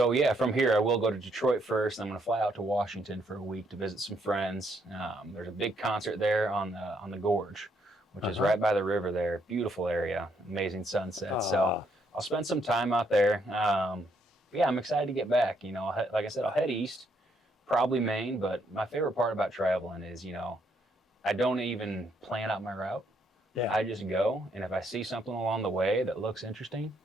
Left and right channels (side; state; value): both; normal; correlation 0.73